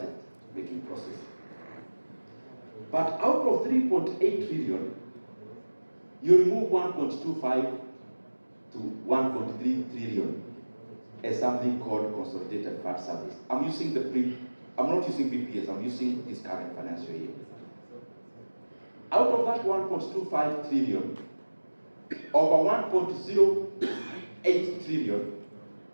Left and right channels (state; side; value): inverted; both; correlation -1.00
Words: making process. But out of 3.8 trillion, you remove 1.25 to 1.3 trillion as something called consolidated fund service. I'm not using PPS, I'm using this current financial year. Out of that 1.25 trillion, over 1.08 trillion